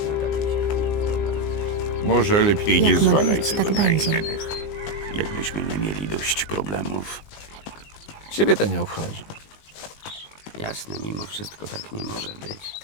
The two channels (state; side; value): late; right; 19 ms